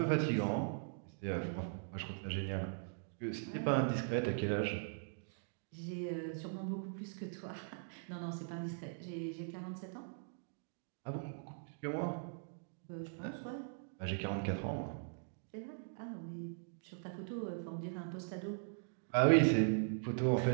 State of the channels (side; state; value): left; silent; digital silence